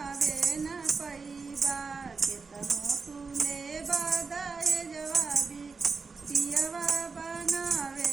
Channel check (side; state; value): left; quieter; 4.7 dB